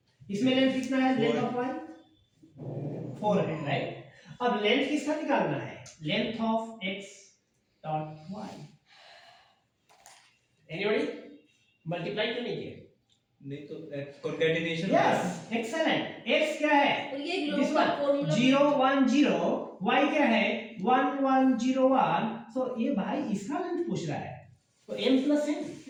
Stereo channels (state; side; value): identical; both; correlation 1.00